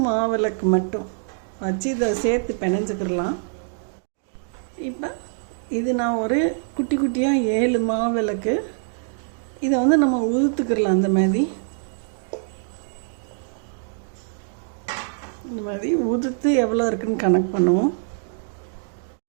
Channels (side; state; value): left; silent; digital silence